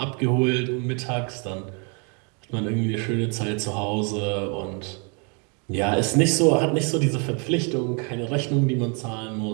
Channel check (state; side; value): quieter; left; 35.5 dB